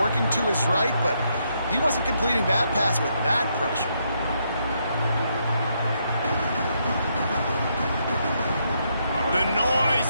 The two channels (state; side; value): inverted; both; correlation -0.77